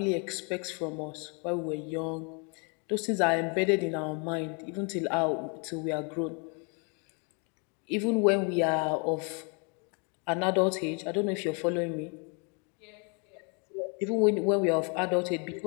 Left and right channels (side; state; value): right; quieter; 35.7 dB